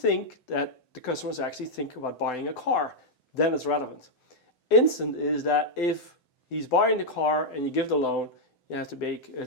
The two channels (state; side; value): late; right; 7.9 ms